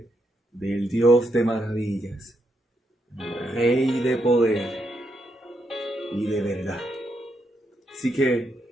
del Dios de maravillas, Rey de poder y de verdad. Así que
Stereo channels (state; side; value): normal; both; correlation 0.80